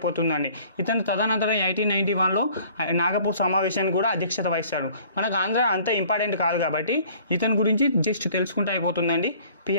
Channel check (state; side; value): inverted; both; correlation -0.53